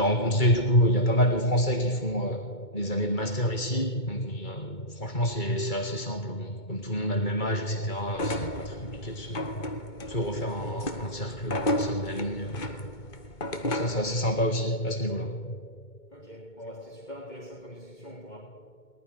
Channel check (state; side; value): late; right; 2.2 ms